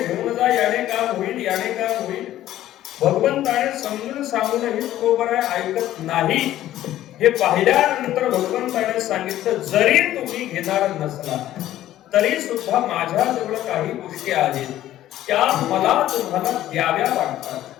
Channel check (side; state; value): right; quieter; 13.4 dB